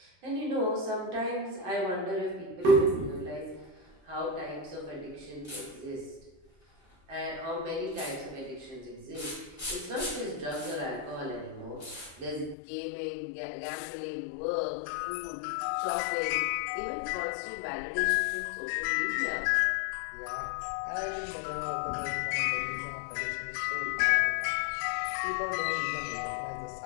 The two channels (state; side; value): drops out; right; at 12.6 s